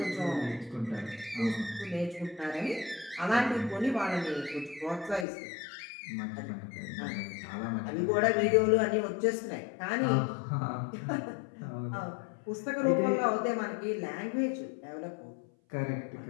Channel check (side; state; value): right; drops out; at 5.2 s